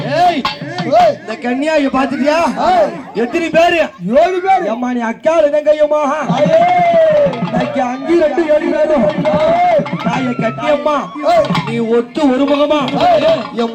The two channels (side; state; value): both; identical; correlation 1.00